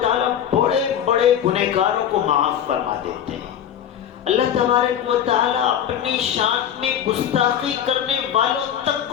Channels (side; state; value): right; quieter; 9.6 dB